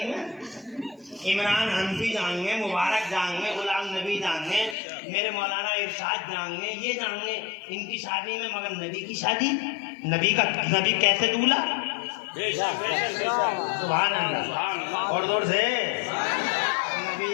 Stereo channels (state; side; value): drops out; right; at 4.8 s